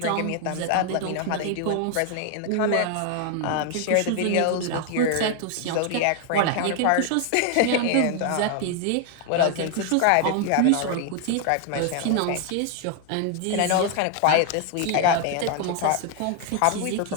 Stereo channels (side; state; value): both; different; correlation 0.00